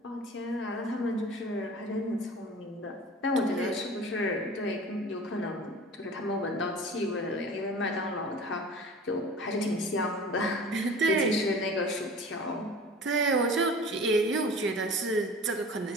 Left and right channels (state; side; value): normal; both; correlation 0.40